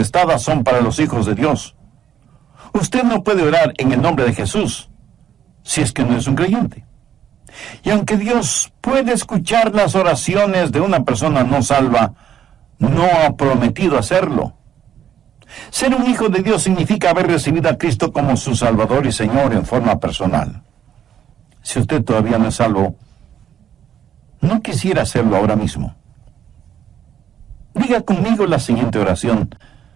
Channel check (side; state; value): left; quieter; 9.5 dB